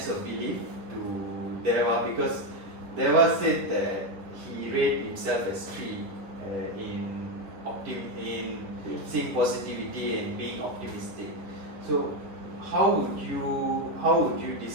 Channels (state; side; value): late; left; 10 ms